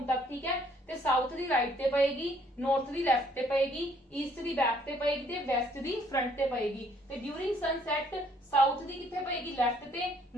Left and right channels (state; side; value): normal; both; correlation 0.64